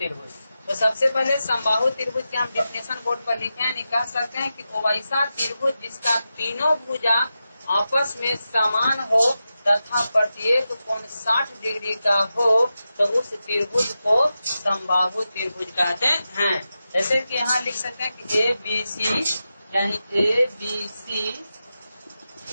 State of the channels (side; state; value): both; inverted; correlation -0.91